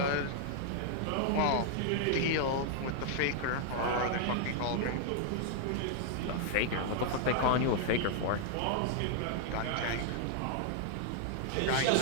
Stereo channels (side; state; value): both; different; correlation 0.00